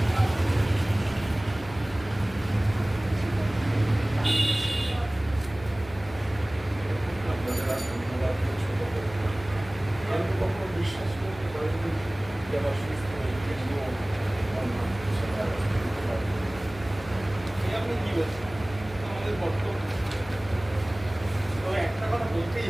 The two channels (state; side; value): noise; left; hum, 17 dB below the sound